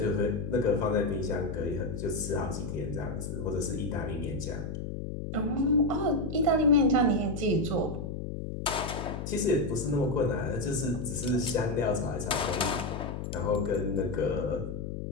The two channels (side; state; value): left; noise; hum, 5 dB below the sound